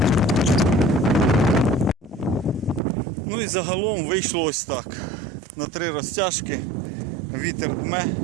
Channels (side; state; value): left; drops out; at 2.8 s